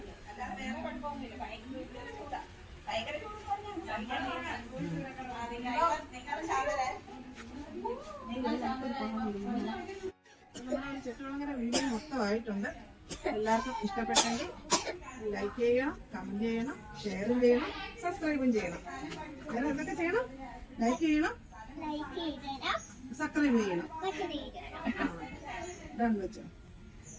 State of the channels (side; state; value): both; identical; correlation 1.00